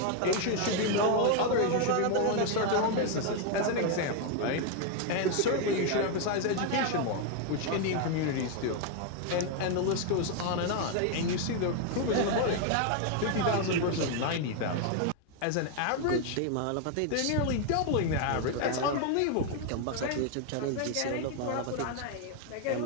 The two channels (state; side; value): different; both; correlation 0.01